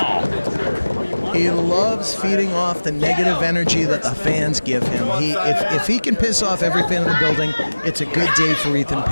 He loves feeding off the negative energy that the fans give him. If he can piss off every fan in the building, it's a good day for Ethan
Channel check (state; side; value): inverted; both; correlation -1.00